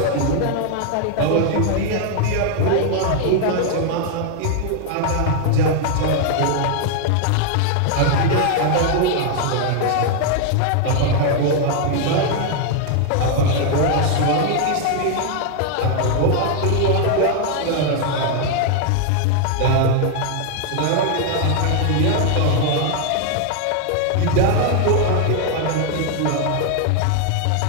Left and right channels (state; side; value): different; both; correlation 0.00